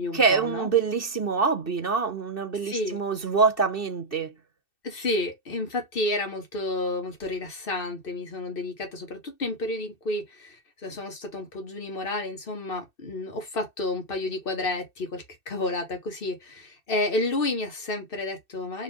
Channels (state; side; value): late; right; 2.6 ms